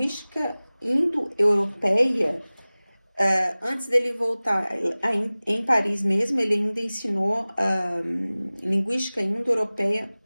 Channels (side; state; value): both; inverted; correlation -0.99